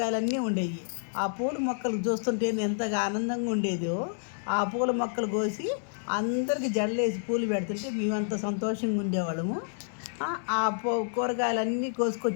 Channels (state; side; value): silent; right; digital silence